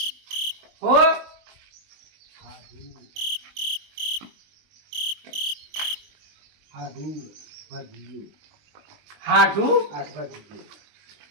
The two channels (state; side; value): late; left; 20 ms